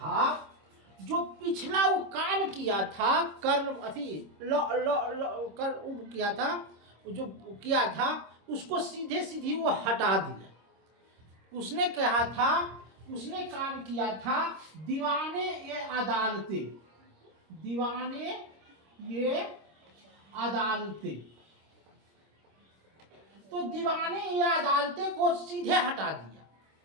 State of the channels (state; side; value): late; left; 26 ms